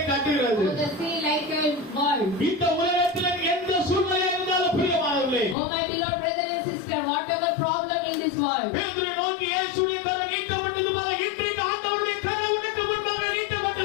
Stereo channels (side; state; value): right; drops out; at 5.6 s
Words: Oh my beloved brother and sister, whatever problem in this world, பேதுரு நோக்கி இயேசுவின் கரம் நீட்டப்பட்டது போல இன்றைக்கு ஆண்டவருடைய கரம் உனக்கு முன்பாக